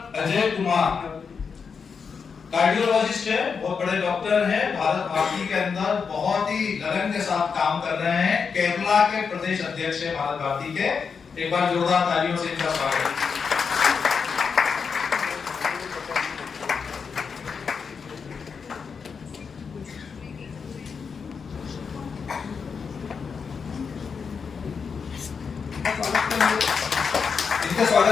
अजय कुमार कार्डियोलॉजिस्ट है, बहुत बड़े डॉक्टर हैं, भारत भारती के अंदर बहुत ही लगन के साथ काम कर रहे हैं। केरला के प्रदेश अध्यक्ष है भारत भारती के। एक बार जोरदार तालियों से इनका स्वागत। इनके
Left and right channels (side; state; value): right; quieter; 5.8 dB